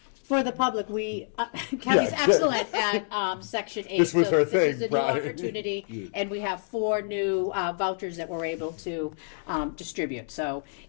For the public, Kelly's Yeah. excellent at Section 8. This was so her This thing, is a new right. opportunity, and we have 4 new vouchers that we're able to distribute. So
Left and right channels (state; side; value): silent; right; digital silence